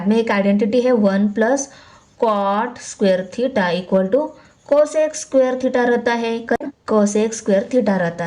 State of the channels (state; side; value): identical; both; correlation 1.00